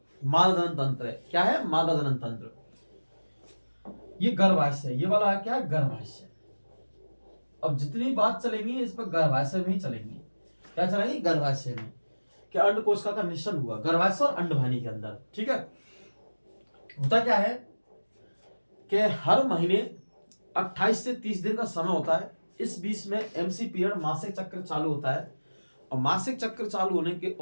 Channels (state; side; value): inverted; both; correlation -1.00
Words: मादा जनन तंत्र है। क्या है? मादा जनन तंत्र। ये गर्भाशय, ये वाला क्या है? गर्भाशय। अब जितनी बात चलेंगी इस पर गर्भाशय में ही चलेंगी। क्या चलेंगी? गर्भाशय में। क्या अंडकोशिका का निश्चल हुआ गर्भाशय और अंडवाहिनी के अंदर, ठीक है। होता क्या है कि हर महीने 28 से 30 दिन का समय होता है। इस बीच में एमसी पीरियड, मासिक चक्र चालू होता है। और मासिक चक्र चालू होने के